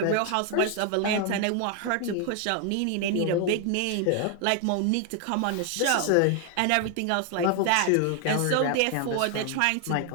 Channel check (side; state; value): both; different; correlation 0.00